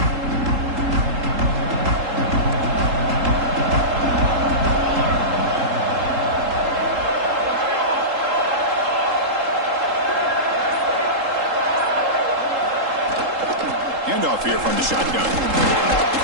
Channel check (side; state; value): left; late; 3.8 ms